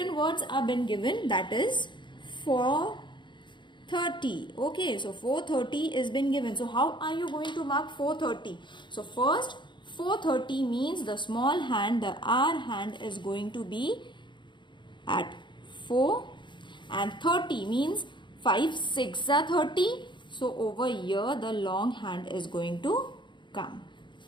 words are been given, that is 4:30. Okay, so 4:30 is been given. So how are you going to mark 4:30? So first 4:30 means the small hand, the R hand is going to be at 4, and 30 means 5 6 are 30. So over here the long hand is going to come.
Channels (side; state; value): right; late; 0.23 ms